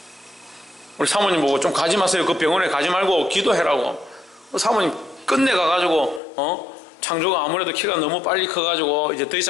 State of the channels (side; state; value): right; drops out; at 6.2 s